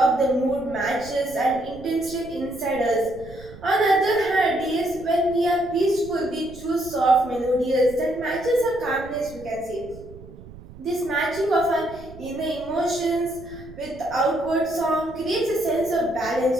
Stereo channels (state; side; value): noise; right; rumble, 18 dB below the sound